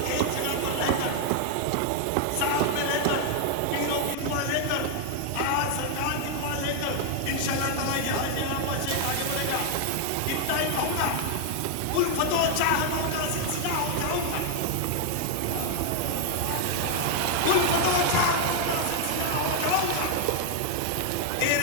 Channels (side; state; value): both; different; correlation 0.00